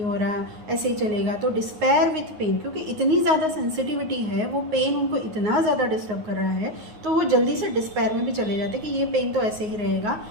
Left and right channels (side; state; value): left; late; 9.5 ms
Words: हो रहा, ऐसे ही चलेगा। तो डिस्पेयर विथ पेन, क्योंकि इतनी ज़्यादा सेंसिटिविटी है, वो पेन उनको इतना ज़्यादा डिस्टर्ब कर रहा है, तो वो जल्दी से डिस्पेयर में भी चले जाते हैं कि ये पेन तो ऐसे ही रहेगा,